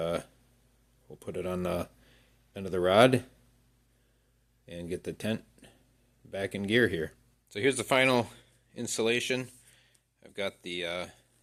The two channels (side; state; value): both; identical; correlation 1.00